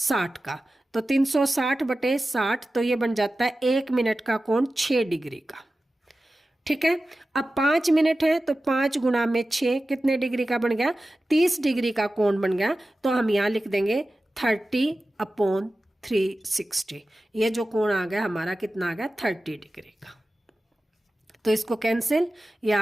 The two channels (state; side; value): normal; both; correlation 0.95